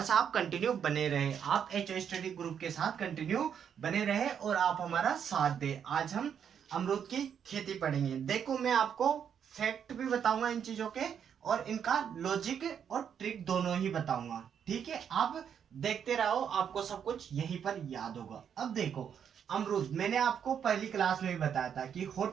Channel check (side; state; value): left; quieter; 8.1 dB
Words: आप कंटिन्यू बने रहे, आप एच स्टडी ग्रुप के साथ कंटिन्यू बने रहे और आप हमारा साथ दे। आज हम अमरूद की खेती पढ़ेंगे। देखो, मैं आपको फैक्ट भी बताऊंगा इन चीजों के और इनका लॉजिक और ट्रिक दोनों ही बताऊंगा। ठीक है, आप देखते रहो, आपको सब कुछ यहीं पर याद होगा। अब देखो, अमरूद, मैंने आपको पहली क्लास में भी बताया था कि